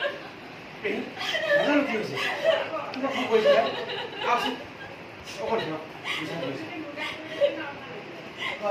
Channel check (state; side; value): identical; both; correlation 1.00